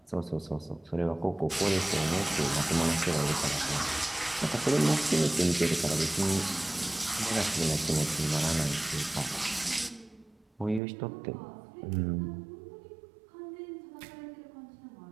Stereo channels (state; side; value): drops out; left; at 10.8 s